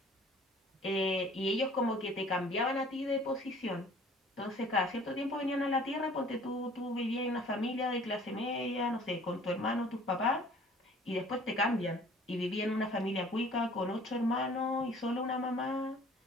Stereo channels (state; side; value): normal; both; correlation 0.51